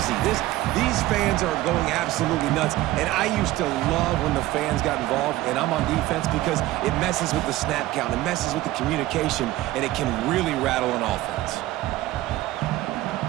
These fans are going absolutely nuts. And I used to love when the fans got involved, and I'm on defense, because it messes with the snap count, it messes with the communication, and it can really rattle an offense.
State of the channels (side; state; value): left; quieter; 16.5 dB